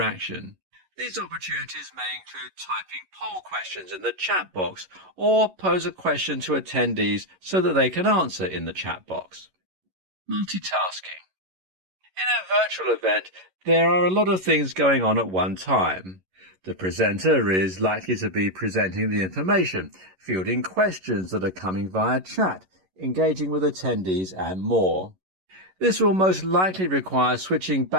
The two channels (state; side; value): late; left; 11 ms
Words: These opportunities may include typing poll questions in the chat box or pose a question to attendees so that they can answer in the chat box. Multitasking. In a virtual event, there are a lot of things going on at one time. The presenter is likely to be presenting the information, fielding questions that are coming via chat, engaging with attendees and more. This will most likely require switching